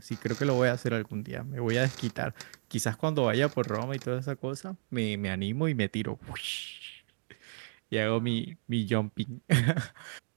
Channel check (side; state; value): left; silent; digital silence